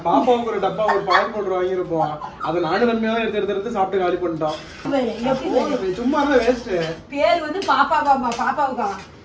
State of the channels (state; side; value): identical; both; correlation 1.00